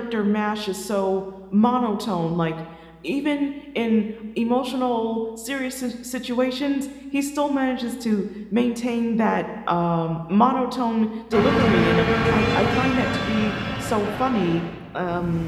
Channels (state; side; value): identical; both; correlation 1.00